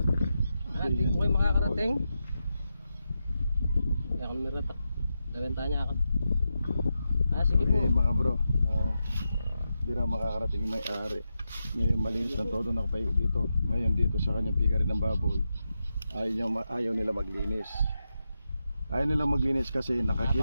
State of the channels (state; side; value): inverted; both; correlation -0.88